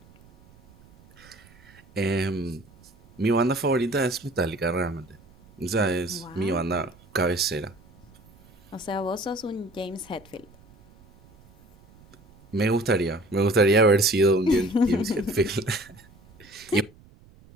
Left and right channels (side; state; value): right; noise; rumble, 26 dB below the sound